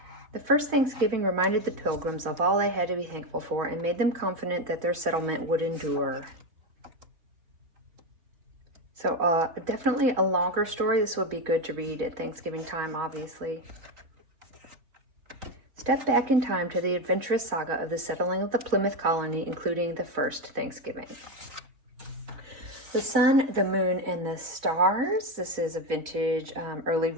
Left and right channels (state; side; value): late; left; 4.1 ms